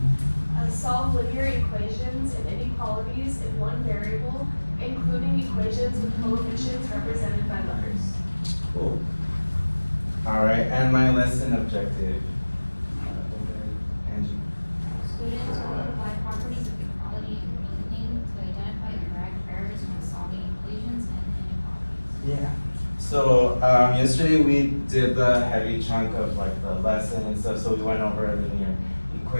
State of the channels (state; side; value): inverted; both; correlation -1.00